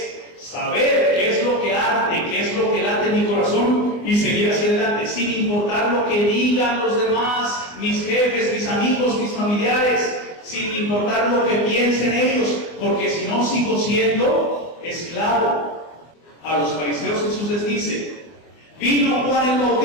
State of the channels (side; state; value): right; late; 24 ms